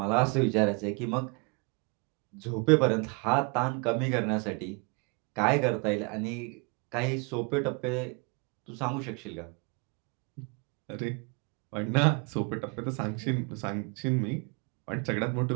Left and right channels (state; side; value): quieter; left; 32.4 dB